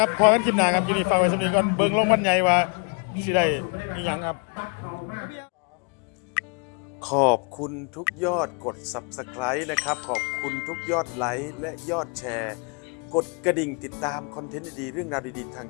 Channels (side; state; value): right; quieter; 36.0 dB